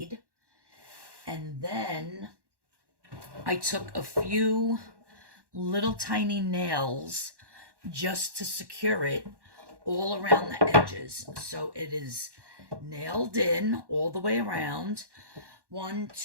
And then I took a few little tiny nails just to secure it all around the edges. So it is nailed in all the way around. 1,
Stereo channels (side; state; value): left; late; 1.1 ms